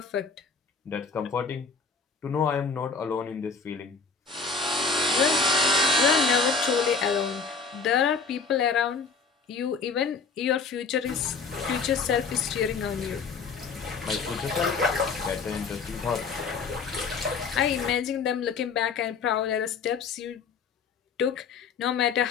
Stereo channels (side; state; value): right; quieter; 4.9 dB